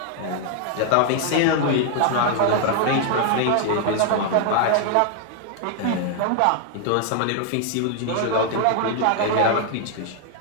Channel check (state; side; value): different; both; correlation 0.00